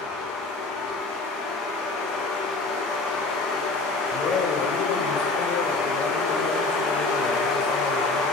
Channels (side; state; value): right; quieter; 3.4 dB